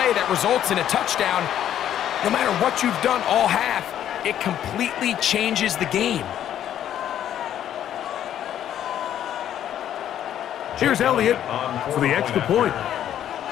that results in a touchdown. No matter what you've done all half, it completely changes the game. Here's Elliott for the extra point.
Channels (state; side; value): quieter; right; 10.7 dB